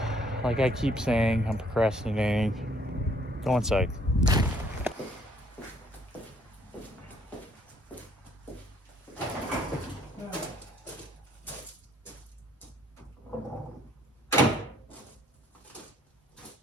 Like I keep saying, I'm procrastinating. Go inside.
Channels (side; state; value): both; normal; correlation 0.64